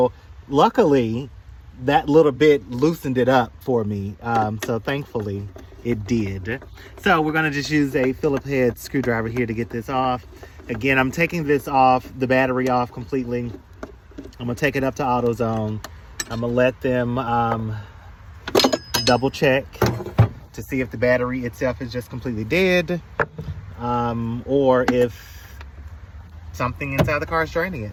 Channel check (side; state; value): both; identical; correlation 1.00